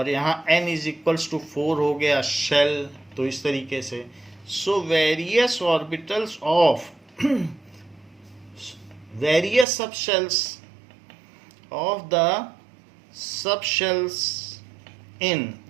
यहाँ n इज इक्वल्स टू 4 हो गया शेल। तो इस तरीके से So various orbitals of various subshells of the subshells in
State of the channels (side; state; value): left; drops out; at 9.7 s